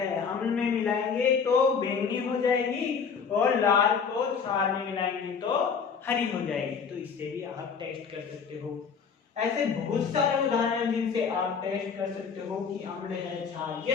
अम्ल में मिलाएंगे तो बैंगनी हो जाएगी और लाल को क्षार में मिलाएंगे तो हरी हो जाएगी। तो इससे भी आप टेस्ट कर सकते हो। ऐसे बहुत सारे उदाहरण जिनसे आप टेस्ट कर सकते हो कि अम्ल है क्षार,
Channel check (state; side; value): quieter; right; 6.1 dB